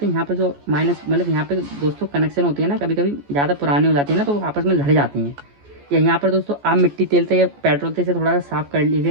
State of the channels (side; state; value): left; late; 14 ms